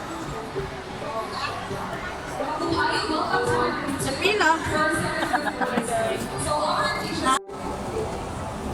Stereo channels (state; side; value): identical; both; correlation 1.00